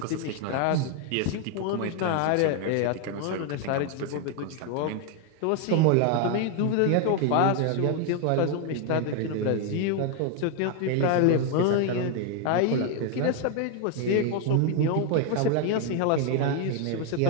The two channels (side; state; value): both; different; correlation 0.01